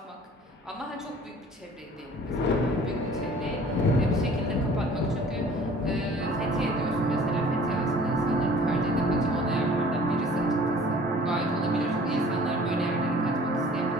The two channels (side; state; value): both; normal; correlation 0.50